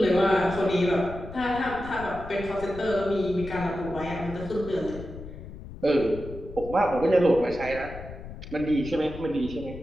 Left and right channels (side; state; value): left; noise; rumble, 13 dB below the sound